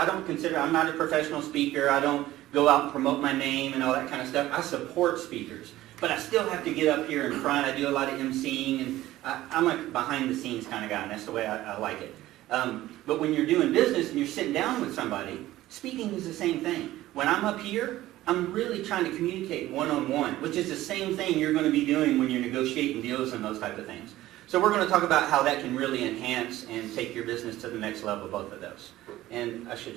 professional speaker. I don't go out and promote my name and all that kind of stuff. I support speakers. But I still have to get up here in front. I do a lot of emceeing, and I'm a behind-the-scenes kind of guy, and that's the way I like it. But when you're doing business and you're sitting down with somebody, speaking is the same thing. When I'm up here, I'm really trying to communicate one-on-one, which is the same thing you're going to be doing when you're negotiating deals and those type of things. So we're going to talk about how that can really enhance and take your business to the next level, both of those. And I should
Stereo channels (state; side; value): quieter; left; 15.6 dB